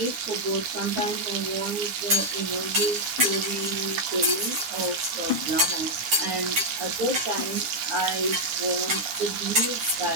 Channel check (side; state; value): left; late; 7.0 ms